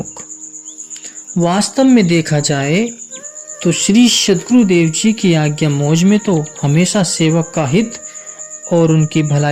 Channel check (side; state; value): both; identical; correlation 1.00